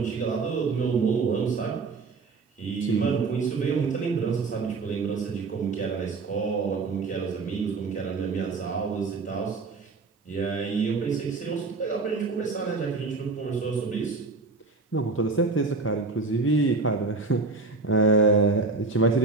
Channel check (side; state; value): left; quieter; 4.0 dB